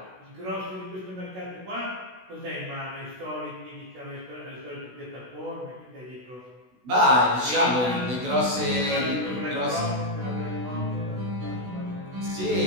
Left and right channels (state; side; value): late; left; 16 ms